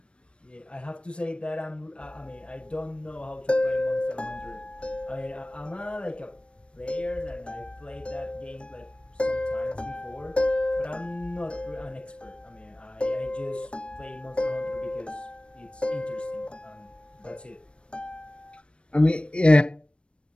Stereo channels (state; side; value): late; right; 0.058 ms